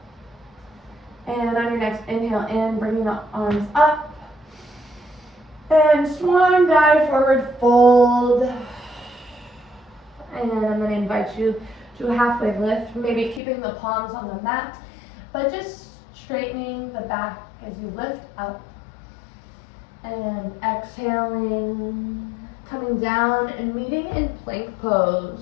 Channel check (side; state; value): right; drops out; at 13.4 s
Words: And on your next inhale in, bringing the arms up. And swan dive, forward fold. And I'm going to invite you to a halfway lift, maybe keeping the palms on the mat, but just straightening the back as you lift up. And exhaling, coming down and meeting in plank